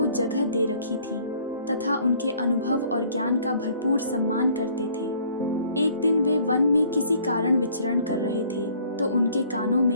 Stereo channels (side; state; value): both; inverted; correlation -0.58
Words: जगह दे रखी थी तथा उनके अनुभव और ज्ञान का भरपूर सम्मान करते थे। एक दिन वे वन में किसी कारण विचरण कर रहे थे तो उनके कानों